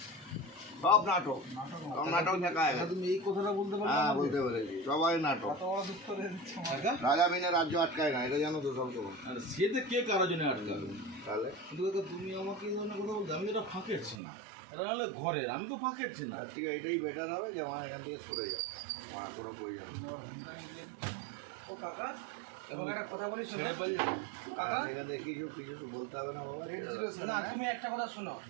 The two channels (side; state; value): left; drops out; at 14.2 s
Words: সব নাটক, সব নাটক শেখায়। তুমি এই কথাটা বলতে পারো? হ্যাঁ বলতে পেরেছি, সবাই নাটক। রাজা বিনে রাজ্য আটকায় না, এটা জানো তো সব তোমার। সেটা কে কারোর জন্য আটকাবে? তাহলে কিন্তু তুমি আমাকে এই ধরনের কথা বলতে, আমি এটা ফাঁকেছি না, এটা হলে ঘরের, আমি তো ফাঁকেছি না। ঠিক আছে, এটাই বেটার হবে যে আমার এখান থেকে সরে যাও, আমার কোনো প্রয়োজন নেই। ও কাকা তোমাকে একটা কথা বলি শোনো কাকা, এখান থেকে কিছু কিছু বলতে হবে না বাবা। না তুমি একটা কথা শোনো,